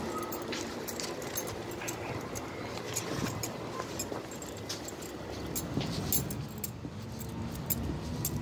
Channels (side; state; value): both; identical; correlation 1.00